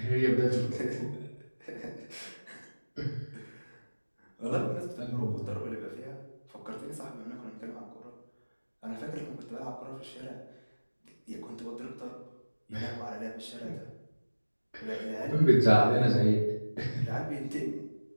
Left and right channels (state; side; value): inverted; both; correlation -1.00